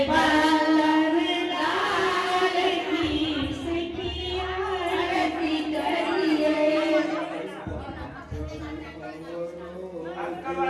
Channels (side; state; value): both; identical; correlation 1.00